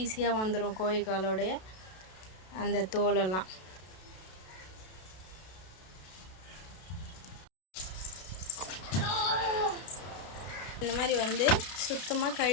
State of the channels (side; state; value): right; late; 32 ms